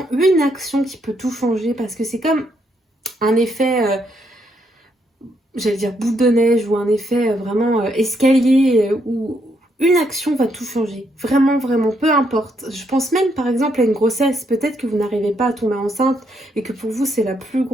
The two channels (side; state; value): both; normal; correlation 0.75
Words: une action qui peut tout changer, parce que c'est comme un effet... j'allais dire boule de neige ou un effet vraiment escalier où une action va tout changer. Vraiment, vraiment, peu importe. Je pense même par exemple à une grossesse. Peut-être que vous n'arrivez pas à tomber enceinte et que pour vous c'est la plus